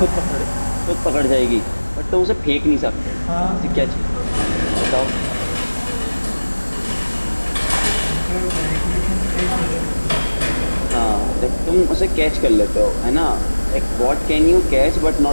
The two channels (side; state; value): both; inverted; correlation -1.00